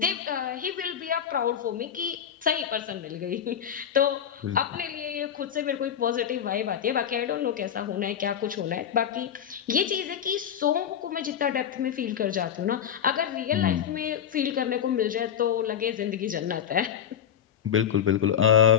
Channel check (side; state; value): right; quieter; 9.0 dB